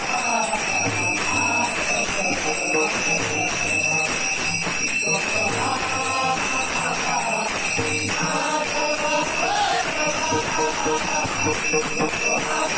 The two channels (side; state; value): both; identical; correlation 1.00